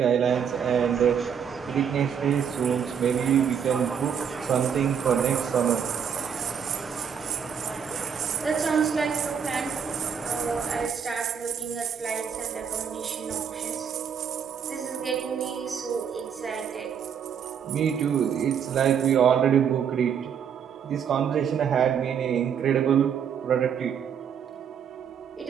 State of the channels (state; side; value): quieter; left; 7.6 dB